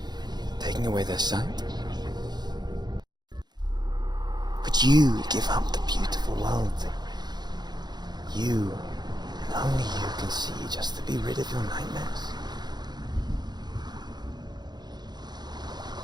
taking away their sight? Would you give up the beautiful world that you, and only you, can see just to be rid of your nightmares?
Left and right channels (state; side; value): late; left; 0.20 ms